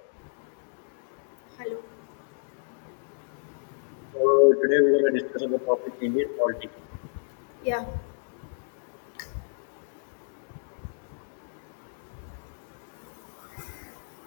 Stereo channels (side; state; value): right; silent; digital silence